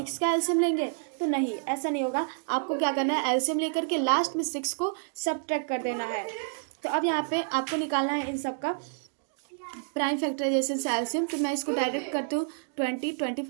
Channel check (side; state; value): left; silent; digital silence